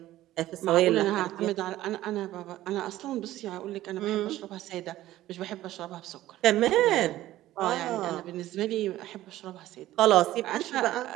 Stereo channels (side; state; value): left; quieter; 14.8 dB